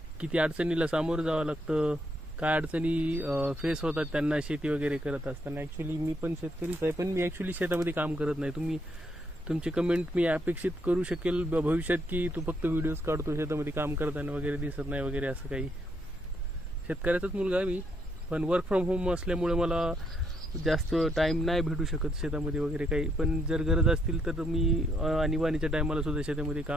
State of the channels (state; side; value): normal; both; correlation 0.74